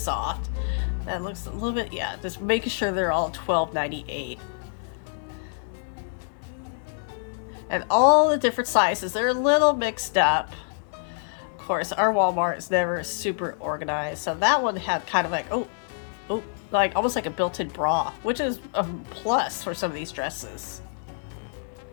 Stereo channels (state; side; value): silent; right; digital silence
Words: That looks a little bit, yeah, just making sure they're all $12.98. And all the different sizes, they're a little mixed up. Of course, our Walmart is never super organized. So that one had kind of like, oh, like almost like a built-in bra, which is a plus for some of these dresses.